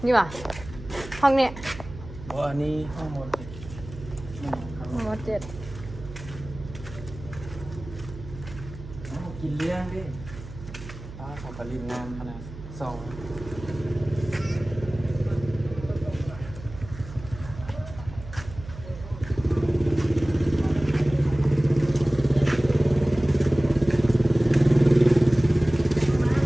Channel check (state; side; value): noise; right; hum, 14 dB below the sound